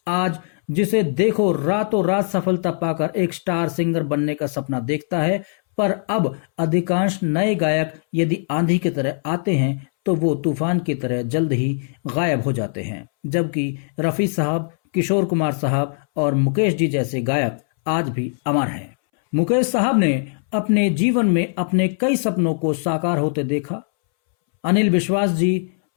आज जिसे देखो रातों रात सफलता पाकर एक स्टार सिंगर बनने का सपना देखता है, पर अब अधिकांश नए गायक यदि आंधी की तरह आते हैं तो वो तूफान की तरह जल्द ही गायब हो जाते हैं, जबकि रफी साहब, किशोर कुमार साहब और मुकेश जी जैसे गायक आज भी अमर हैं। मुकेश साहब ने अपने जीवन में अपने कई सपनों को साकार होते देखा। अनिल विश्वास जी,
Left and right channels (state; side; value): silent; right; 64 dB below the other